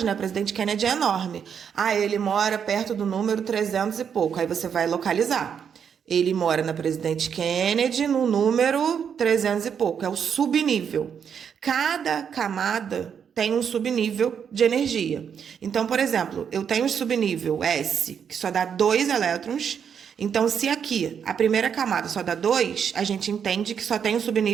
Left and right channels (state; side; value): quieter; left; 7.5 dB